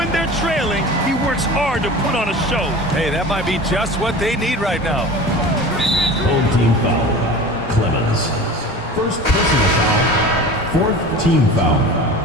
they're trailing, he works hard to put on a show. Hey, that might be just what they need right now. Home team foul. Clemens. First personal foul. 4th team foul.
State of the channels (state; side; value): normal; both; correlation 0.36